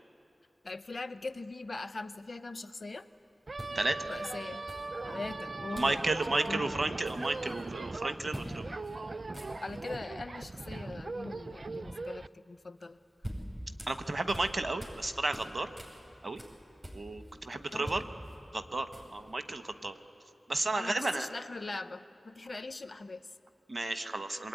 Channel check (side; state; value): both; normal; correlation 0.95